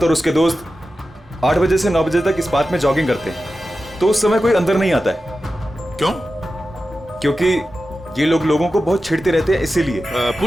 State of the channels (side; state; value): both; normal; correlation 0.93